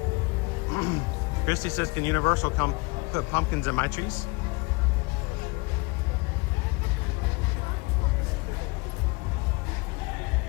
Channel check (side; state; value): right; quieter; 26.4 dB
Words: Christy says, can Universal come put pumpkins in my trees?